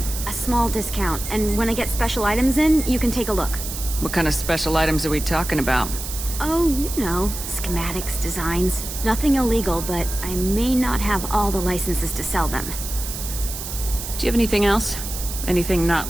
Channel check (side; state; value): right; noise; hiss, 8 dB below the sound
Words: a small discount, and when I get special items in, you can take a look. What kind of special items are we talking about? Oh, you know, schematics, designs. Nothing illegal, but I may not have all the licenses to sell them. Do you have anything else? Anything not